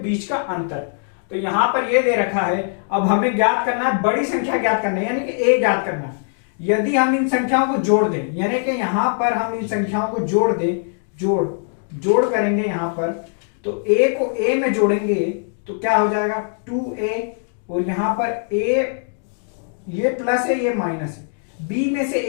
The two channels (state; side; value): silent; right; 58 dB below the other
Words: का अंतर। तो यहां पर ये दे रखा है, अब हमें ज्ञात करना है बड़ी संख्या ज्ञात करना है, यानी कि a ज्ञात करना है। यदि हम इन संख्याओं को जोड़ दें, यानी कि यहां पर हम इन संख्याओं को जोड़ दें, जोड़ करेंगे यहां पर, तो a को a में जोड़ेंगे तो क्या हो जाएगा 2a, और यहां पर a ये प्लस है ये माइनस है, b में से